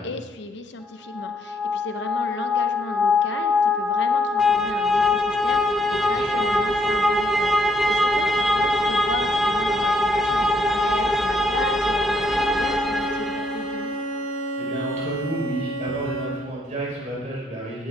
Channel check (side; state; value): both; normal; correlation 0.71